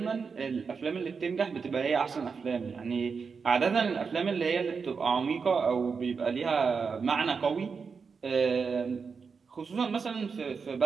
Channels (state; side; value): quieter; left; 5.4 dB